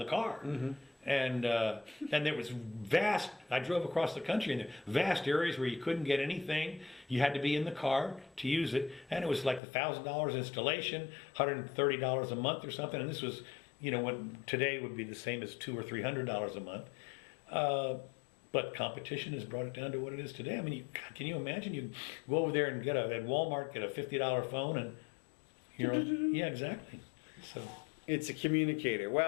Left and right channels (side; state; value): right; drops out; at 9.6 s